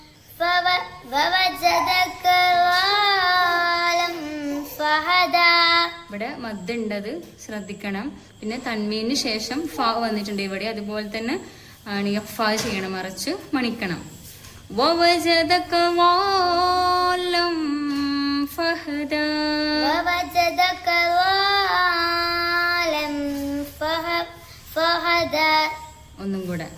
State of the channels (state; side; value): identical; both; correlation 1.00